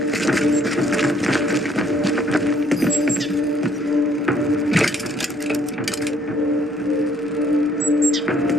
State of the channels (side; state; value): right; noise; hum, 28 dB below the sound